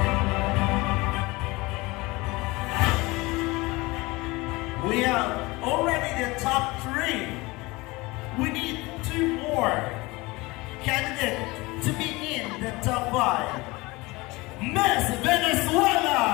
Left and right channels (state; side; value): quieter; right; 22.7 dB